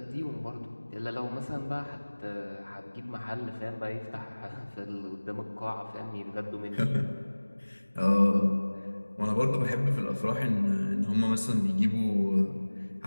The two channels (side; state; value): both; inverted; correlation -1.00